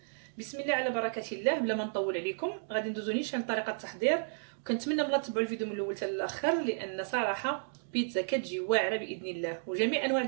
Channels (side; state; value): left; silent; digital silence